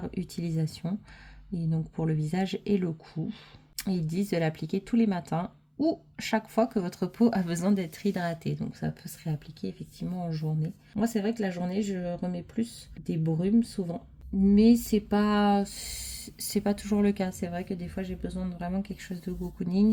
utilisation, et donc pour le visage et le cou. Ils disent de l'appliquer tous les matins ou chaque fois que votre peau a besoin d'être hydratée. Donc ça peut se réappliquer effectivement en journée. Moi, c'est vrai que la journée, je remets plus des brumes souvent. Mais c'est pas toujours le cas. C'est vrai que des fois j'ai besoin de vraiment quelque chose de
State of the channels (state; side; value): identical; both; correlation 1.00